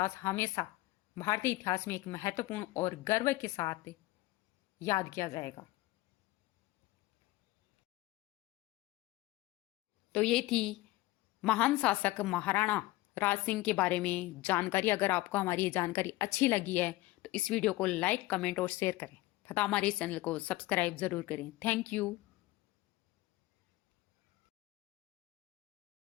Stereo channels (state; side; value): quieter; right; 18.7 dB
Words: हमेशा भारतीय इतिहास में एक महत्वपूर्ण और गर्व के साथ याद किया जाएगा। तो ये थी महान शासक महाराणा राज सिंह के बारे में जानकारी। अगर आपको हमारी ये जानकारी अच्छी लगी है तो इस वीडियो को लाइक, कमेंट और शेयर करें तथा हमारे चैनल को सब्सक्राइब जरूर करें। Thank you.